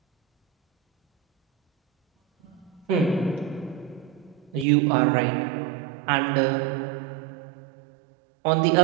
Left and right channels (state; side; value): drops out; left; at 4.7 s